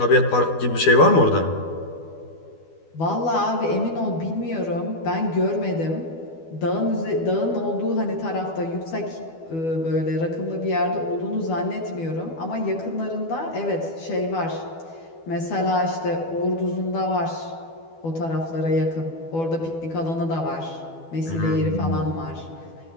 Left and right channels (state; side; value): late; right; 12 ms